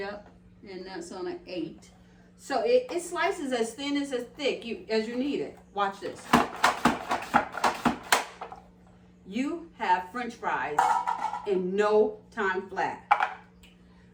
And that's on an 8. So it slices as thin as thick as you need it. Watch this. You have French fries in no time flat.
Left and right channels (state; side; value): identical; both; correlation 1.00